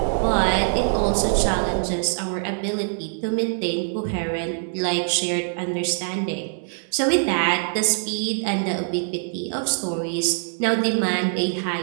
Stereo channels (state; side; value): silent; left; digital silence